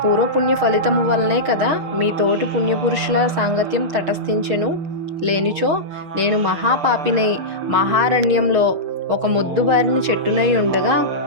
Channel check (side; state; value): left; late; 6.3 ms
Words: పూర్వపుణ్య ఫలితము వల్లనే కదా మీ తోటి పుణ్యపురుషుల సాంగత్యం తటస్థించెను. లేనిచో నేను మహాపాపినై మహారణ్యంలో ఒక మొద్దుబారిన చెట్టునై ఉండగా